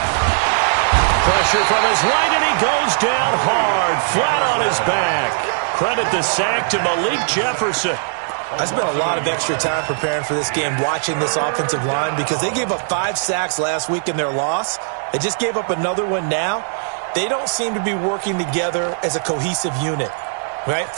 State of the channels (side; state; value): left; silent; digital silence